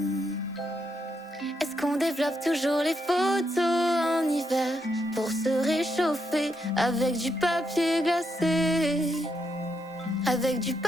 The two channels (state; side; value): normal; both; correlation 0.80